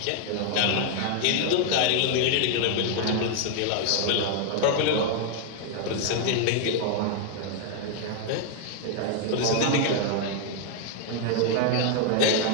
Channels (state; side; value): different; both; correlation 0.00